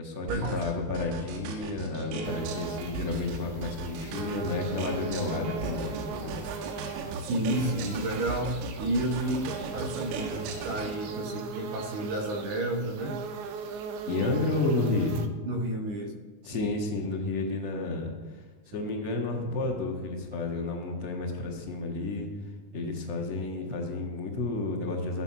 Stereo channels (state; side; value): late; left; 19 ms